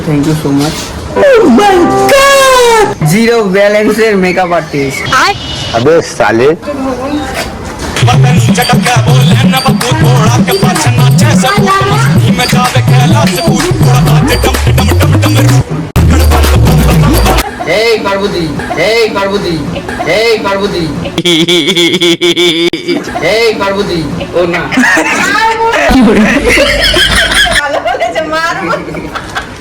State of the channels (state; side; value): identical; both; correlation 1.00